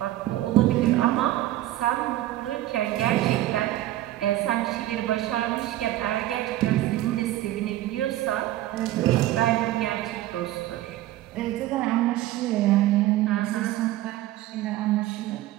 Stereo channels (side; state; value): left; quieter; 15.0 dB